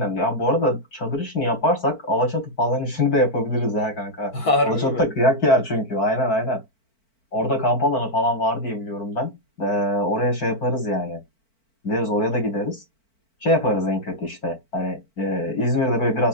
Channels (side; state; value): right; late; 4.5 ms